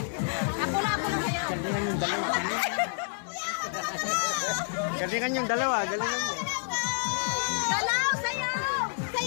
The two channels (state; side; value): silent; right; digital silence